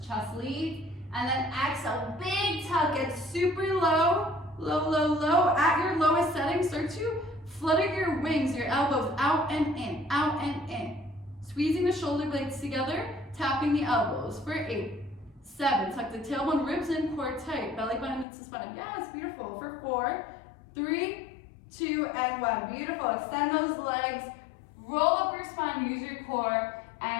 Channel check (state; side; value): drops out; right; at 18.2 s